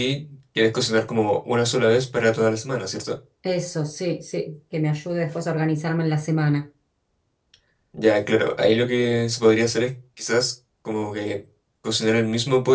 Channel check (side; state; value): both; identical; correlation 1.00